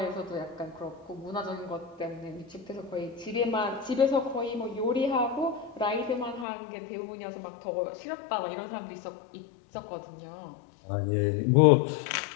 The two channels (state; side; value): drops out; right; at 6.5 s